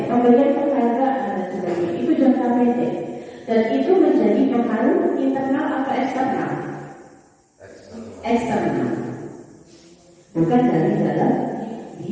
Pemberian penghargaan dan sebagainya itu jangka pendek, dan itu menjadi pengaruh internal atau eksternal? Eksternal, bukan dari dalam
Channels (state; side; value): identical; both; correlation 1.00